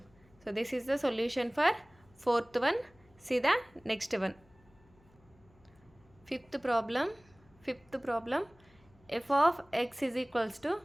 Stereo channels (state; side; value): noise; left; hum, 30 dB below the sound